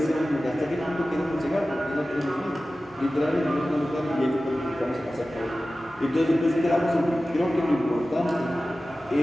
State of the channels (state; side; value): normal; both; correlation 0.95